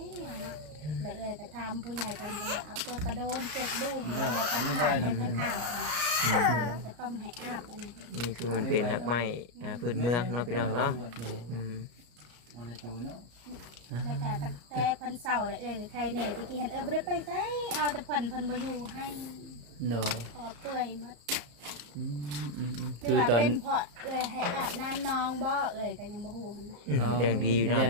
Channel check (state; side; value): late; left; 34 ms